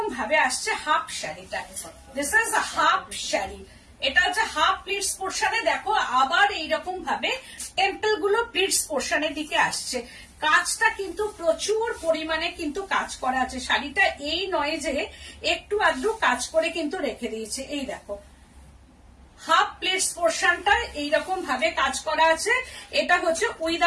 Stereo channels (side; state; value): both; identical; correlation 1.00